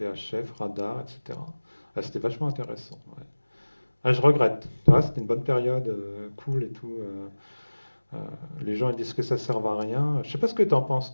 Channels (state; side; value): inverted; both; correlation -1.00